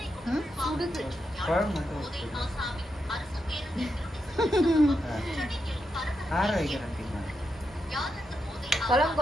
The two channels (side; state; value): both; normal; correlation 0.85